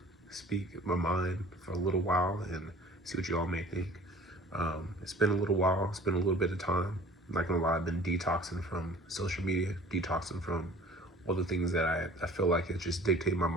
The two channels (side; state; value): both; normal; correlation 0.48